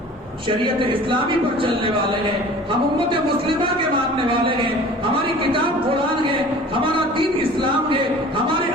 شریعت اسلامی پر چلنے والے ہیں, ہم امت مسلمہ کے ماننے والے ہیں, ہماری کتاب قرآن ہے, ہمارا دین اسلام ہے, ہمارے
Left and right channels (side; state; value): both; normal; correlation 0.44